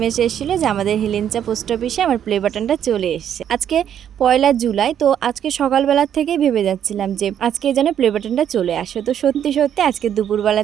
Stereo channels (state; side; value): quieter; left; 9.6 dB